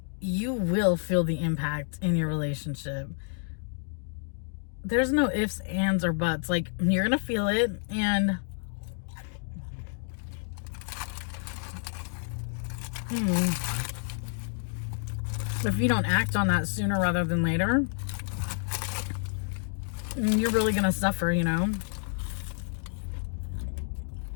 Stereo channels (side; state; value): right; silent; digital silence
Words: you will feel the impact in your relationship. There's no ifs, ands, or buts. Like, you're gonna feel it. And if you don't act on that sooner rather than later, you're really gonna suffer, you know,